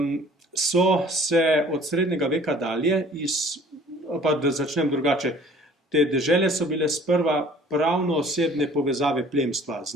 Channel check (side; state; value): both; normal; correlation 0.51